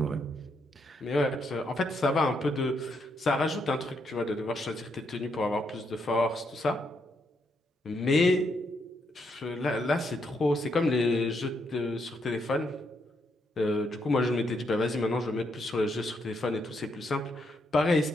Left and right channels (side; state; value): both; normal; correlation 0.77